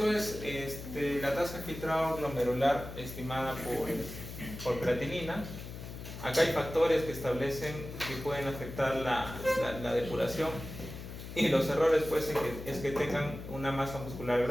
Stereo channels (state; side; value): noise; left; hum, 10 dB below the sound